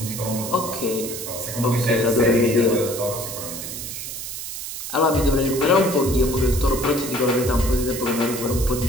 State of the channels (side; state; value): right; noise; hiss, 7 dB below the sound